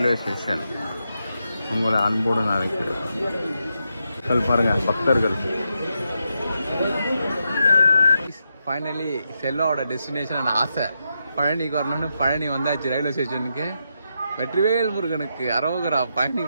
ஸ்டேஷன் உங்களை அன்போடு நான் இருக்கிறேன். பாருங்க பக்தர்கள். ஃபைனலி செல்வாவோட டெஸ்டினேஷன் ஆசை பழனிக்கு வரணும்னு பழனி வந்தாச்சு ரயில்வே ஸ்டேஷனுக்கு. வெற்றிவேல் முருகனுக்கு அரோகரா. பழனி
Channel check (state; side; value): inverted; both; correlation -0.84